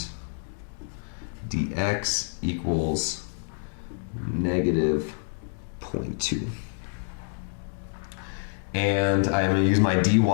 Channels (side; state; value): right; silent; digital silence